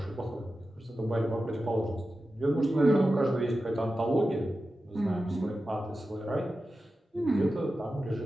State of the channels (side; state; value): both; normal; correlation 0.93